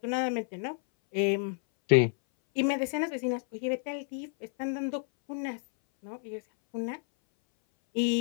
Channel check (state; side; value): silent; right; 58 dB below the other